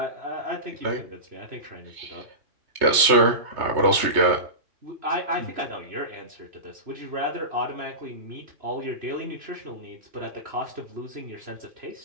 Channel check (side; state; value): left; late; 3.2 ms